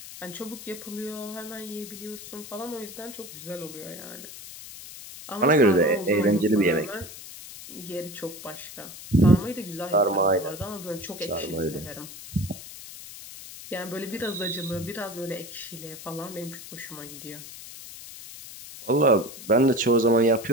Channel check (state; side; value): noise; left; hiss, 14 dB below the sound